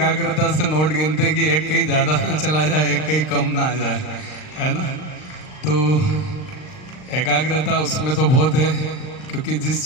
से नोट गिनते कि एक कहीं ज्यादा ना चला जाए, एक कहीं कम ना आ जाए, है ना? तो एकाग्रता उसमें तो बहुत है, क्योंकि जिस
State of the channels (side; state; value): right; late; 39 ms